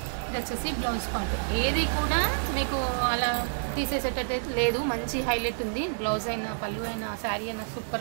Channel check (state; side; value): silent; left; digital silence